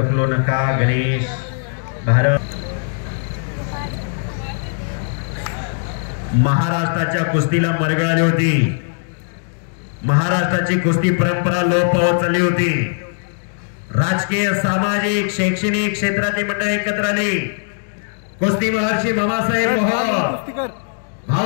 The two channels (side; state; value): right; silent; digital silence